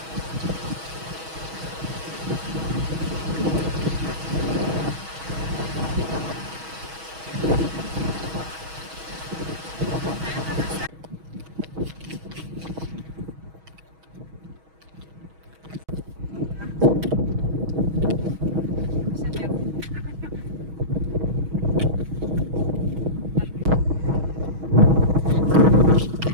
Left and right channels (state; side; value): late; left; 6.2 ms